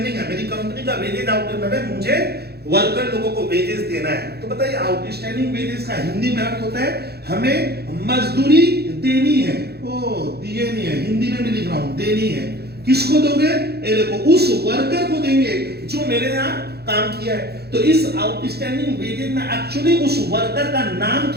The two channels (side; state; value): left; late; 0.47 ms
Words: है, मेरी कंपनी का वेजेस आउटस्टैंडिंग है, मुझे वर्कर लोगों को वेजेस देना है। तो बताइए आउटस्टैंडिंग वेजेस का हिंदी में अर्थ होता है हमें मजदूरी देनी है। ओ दिए नहीं है, हिंदी में भी लिख रहा हूं, देनी है। किसको दोगे? ये देखो उस वर्कर को देंगे जो मेरे यहाँ काम किया है। तो इस आउटस्टैंडिंग वेजेस में एक्चुअली उस वर्कर का नाम